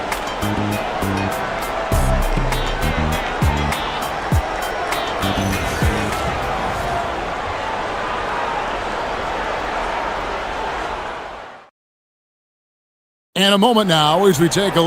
And a moment now as we take a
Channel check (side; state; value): both; identical; correlation 1.00